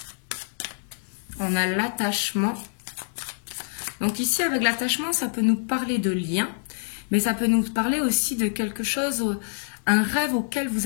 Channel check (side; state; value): right; silent; 61 dB below the other